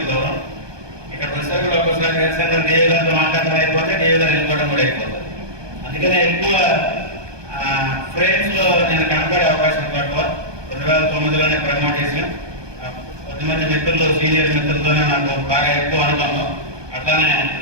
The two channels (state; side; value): late; left; 1.2 ms